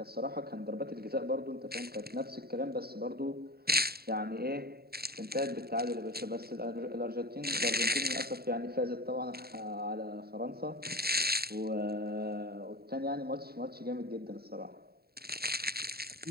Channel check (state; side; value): late; left; 0.45 ms